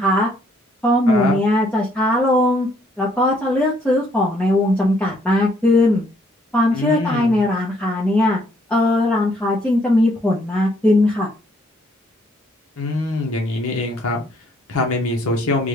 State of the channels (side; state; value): both; normal; correlation 0.67